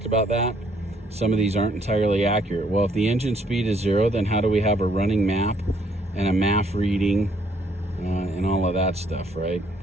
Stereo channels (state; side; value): normal; both; correlation 0.67